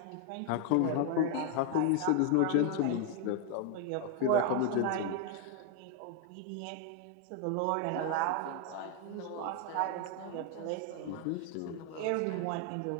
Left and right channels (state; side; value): different; both; correlation 0.00